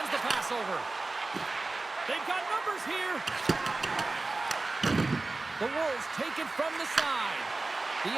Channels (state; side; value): quieter; left; 3.3 dB